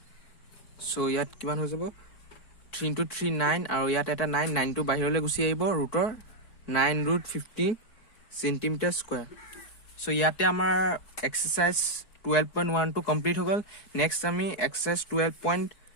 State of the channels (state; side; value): late; right; 4.6 ms